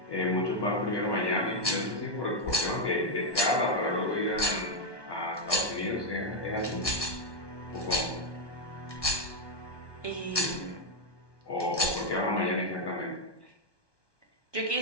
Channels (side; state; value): right; late; 1.2 ms